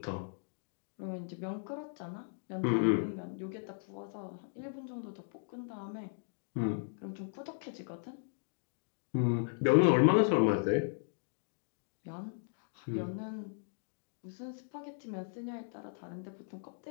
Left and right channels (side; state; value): right; silent; digital silence